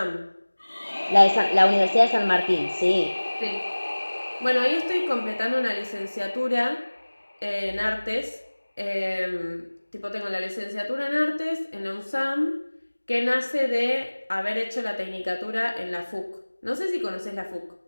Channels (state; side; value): inverted; both; correlation -1.00